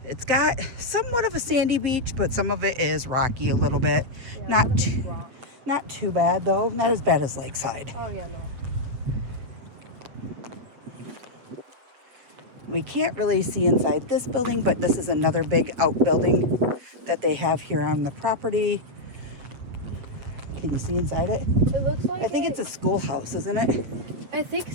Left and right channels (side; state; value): left; late; 8.3 ms